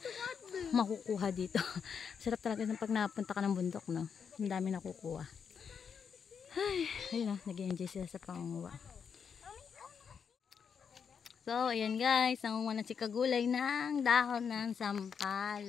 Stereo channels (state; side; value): quieter; right; 6.7 dB